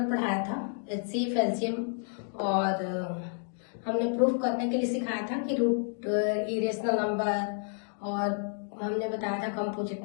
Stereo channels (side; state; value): right; silent; 58 dB below the other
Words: पढ़ाया था, एचसीएफ, एलसीएम और हमने प्रूफ करने के लिए सिखाया था कि रूट इरेशनल नंबर, और हमने बताया था